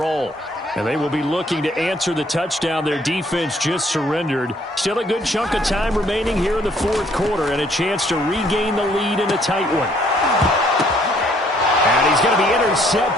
And they will be looking to answer the touchdown their defense just surrendered. Still a good chunk of time remaining here in the 4th quarter and a chance to regain the lead in a tight one. And he's going to be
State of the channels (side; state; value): both; normal; correlation 0.64